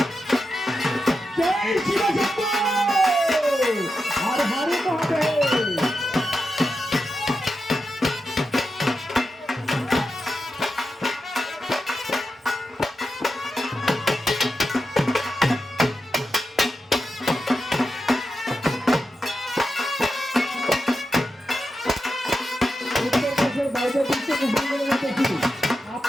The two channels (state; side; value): normal; both; correlation 0.89